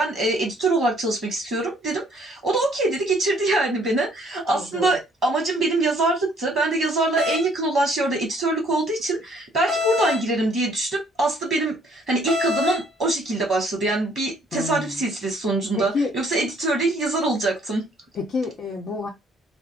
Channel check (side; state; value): both; normal; correlation 0.62